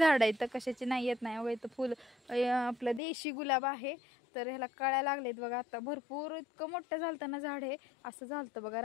इथं कशाची नाही येत नाही. बघा इथं फुल आपलं देशी गुलाब आहे तर ह्याला कळ्या लागलेत बघा. आता भरपूर इतकं मोठं झालतं ना झाड हे असं झालतं बघा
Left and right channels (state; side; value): drops out; right; at 3.0 s